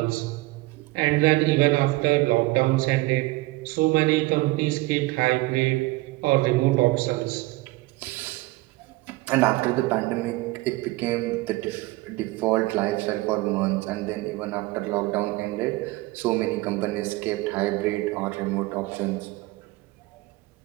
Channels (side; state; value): left; quieter; 20.9 dB